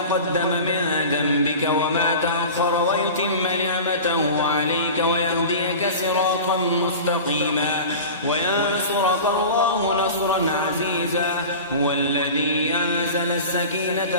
من ذنبك وما تأخر ويتم نعمته عليك ويهديك صراطا مستقيما وينصرك الله نصرا عزيزا. هو الذي أنزل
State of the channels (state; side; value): inverted; both; correlation -0.34